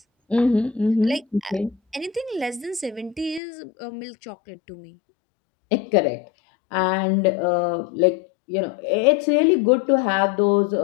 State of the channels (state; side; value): drops out; right; at 3.4 s